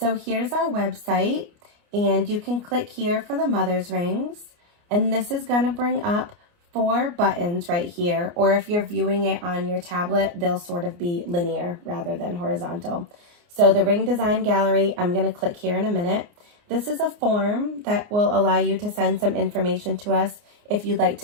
here's our website, and you can click here for the mother's rings, and this is going to bring up 4 buttons right here, or if you're viewing it on your tablet, they'll sort of be linear rather than horizontal. So the ring design gallery, I'm going to click here in a minute. This is a form that will allow you to send some information to us if you'd like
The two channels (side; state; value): left; late; 29 ms